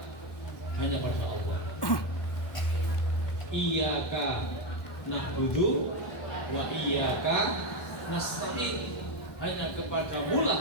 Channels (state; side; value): late; right; 1.1 ms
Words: hanya pada Allah. Iyyaka na'budu wa iyyaka nasta'in. Hanya kepadamu